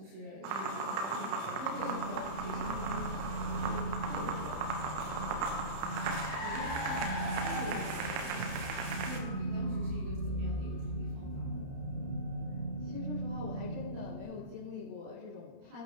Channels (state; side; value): late; left; 31 ms